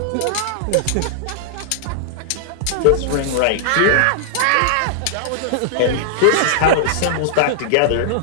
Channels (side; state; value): both; different; correlation -0.01